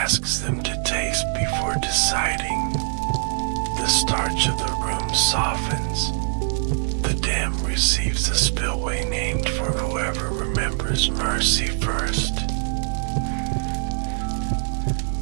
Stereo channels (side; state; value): left; silent; digital silence